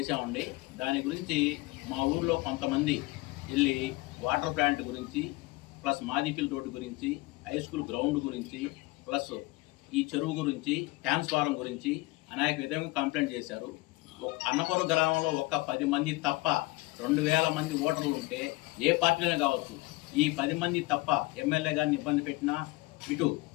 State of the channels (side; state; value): right; quieter; 22.0 dB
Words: దాని గురించి మా ఊర్లో కొంతమంది వెళ్ళి వాటర్ ప్లాంట్ గురించి, ప్లస్ మాదిపిల్లి రోడ్డు గురించి, హై స్కూల్ గ్రౌండ్ గురించి, ప్లస్ ఈ చెరువు గురించి, ట్రాన్స్ఫారం గురించి అనేక విధంగా కంప్లైంట్ చేశారు. అన్నపురం గ్రామంలో ఒక్క 10 మంది తప్ప 2000 మంది ఓటర్లు ఉంటే ఏ పార్టీలోనే కావచ్చు, ఈ 10 మంది తప్ప ఎమ్మెల్యే గారిని ఇబ్బంది పెట్టినా, ఇటు